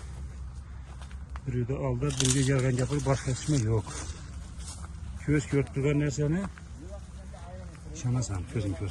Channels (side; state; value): both; identical; correlation 1.00